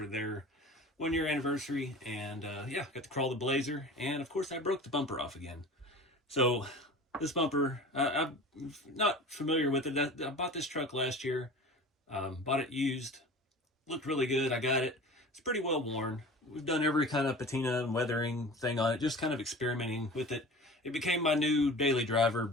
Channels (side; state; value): both; normal; correlation 0.38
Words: their 1-year anniversary, and got to crawl the Blazer, and of course I broke the bumper off again. So this bumper, I'm not familiar with it. I bought this truck last year, bought it used, looked really good. I got it. It's pretty well worn. We've done every kind of patina and weathering thing on it, just kind of experimenting with it. It became my new daily driver